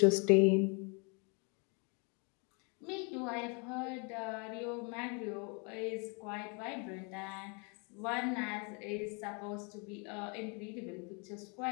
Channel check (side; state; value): right; quieter; 34.3 dB